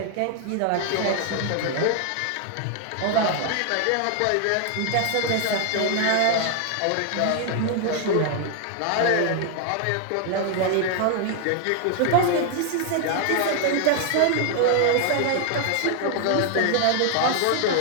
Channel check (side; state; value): both; different; correlation 0.00